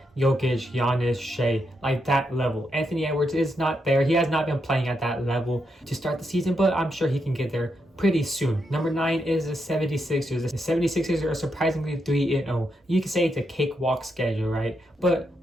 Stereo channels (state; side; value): normal; both; correlation 0.82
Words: Jokic, Giannis, Shea, like that level. Anthony Edwards is not there. He has not been playing at that level to start the season, but I'm sure he can get there pretty soon. Number 9 is the 76ers. The 76ers are surprisingly 3-0. You can say it's a cakewalk schedule, right?